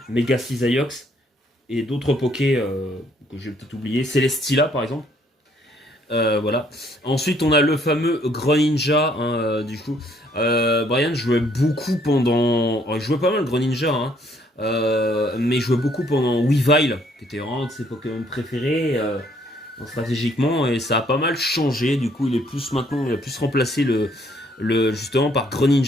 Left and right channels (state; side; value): normal; both; correlation 0.66